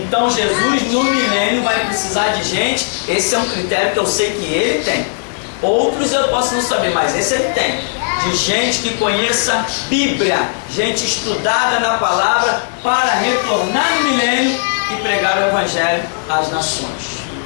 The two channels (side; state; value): right; silent; digital silence